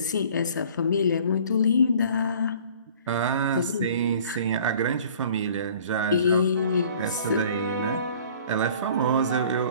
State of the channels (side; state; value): both; inverted; correlation -0.50